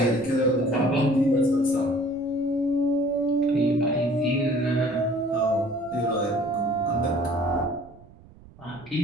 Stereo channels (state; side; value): noise; right; rumble, 23 dB below the sound